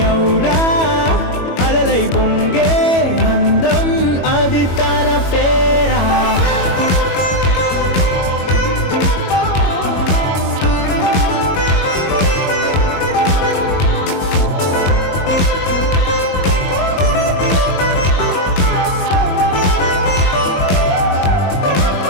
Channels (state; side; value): late; right; 22 ms